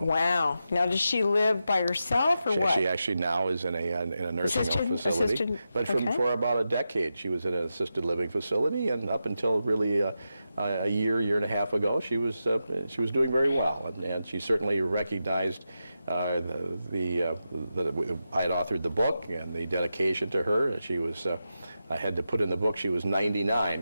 Wow. Now, does she live by herself or what? She actually now is in a nursing home facility. But for about a decade, she was in an assisted living facility, and up until really a year and a half ago, she was doing very well, and she certainly recognized I had authored the book and the dedication to her, and she was. I had to put in the book she was 99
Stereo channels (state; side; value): inverted; both; correlation -0.89